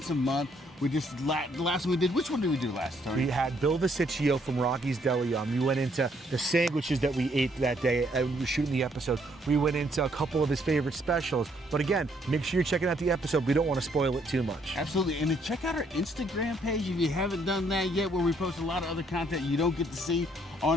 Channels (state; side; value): normal; both; correlation 0.69